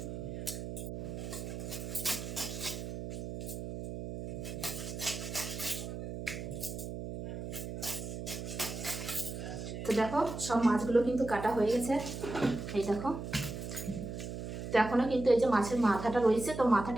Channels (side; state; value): right; noise; hum, 7 dB below the sound